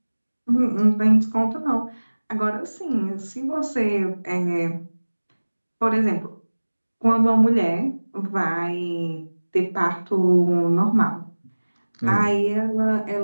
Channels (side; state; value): both; inverted; correlation -1.00